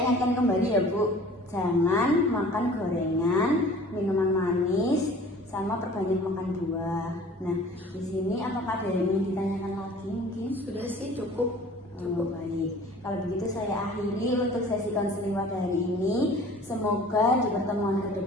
ingatkan kembali ya Bu, jangan makan gorengan, minuman manis, sama perbanyak makan buah. Nah di sini apakah ada yang ingin ditanyakan lagi mungkin? Sudah sih cukup. Oh, baik. Kalau begitu saya akhiri untuk sesi konseling pada hari ini. Semoga di pertemuan ke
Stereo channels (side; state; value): both; normal; correlation 0.47